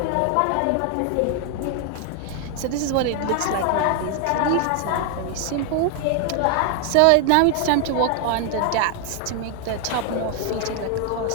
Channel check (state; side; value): different; both; correlation 0.00